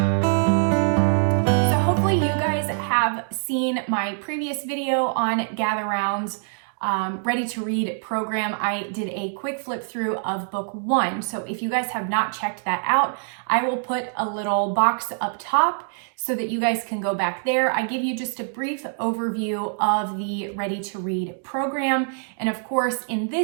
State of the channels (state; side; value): silent; left; digital silence